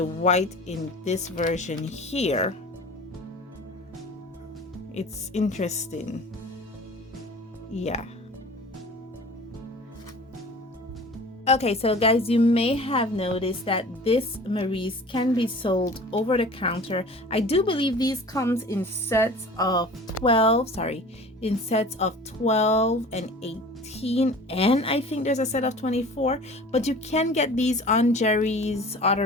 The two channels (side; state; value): both; normal; correlation 0.42